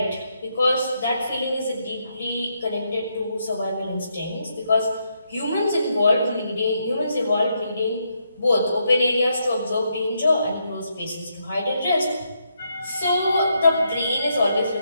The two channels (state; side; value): inverted; both; correlation -0.79